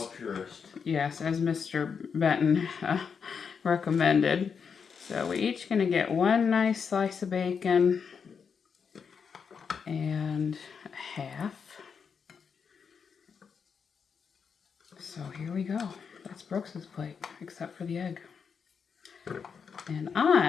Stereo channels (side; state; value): right; quieter; 6.3 dB